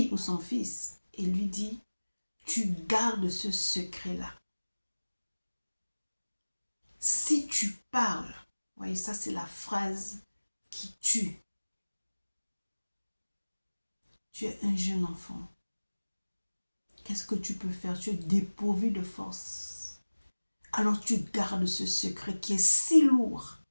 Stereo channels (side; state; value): both; inverted; correlation -1.00